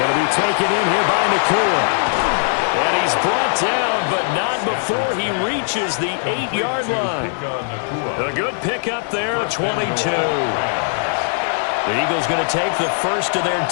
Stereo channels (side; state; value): right; silent; digital silence